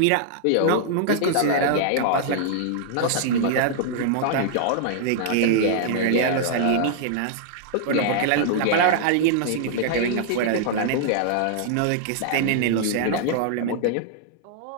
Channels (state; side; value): different; both; correlation -0.01